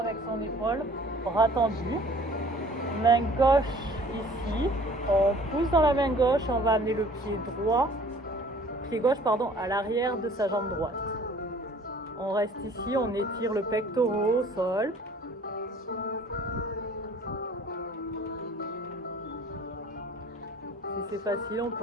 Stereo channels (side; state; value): both; normal; correlation 0.51